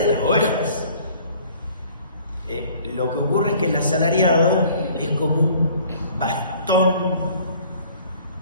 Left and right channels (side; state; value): both; inverted; correlation -0.53